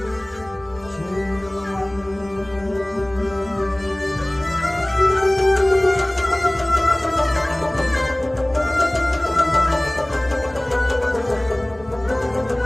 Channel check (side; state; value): left; noise; rumble, 26 dB below the sound